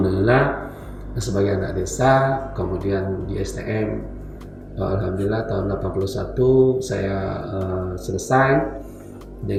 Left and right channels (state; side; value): identical; both; correlation 1.00